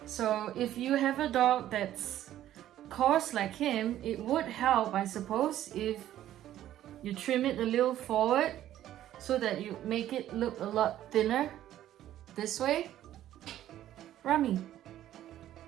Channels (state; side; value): quieter; left; 12.5 dB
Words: So if you have a dog that's coarse like him, it would help, I suppose, if you trim it a little forward so that you make it look a lot thinner this way. Rummy,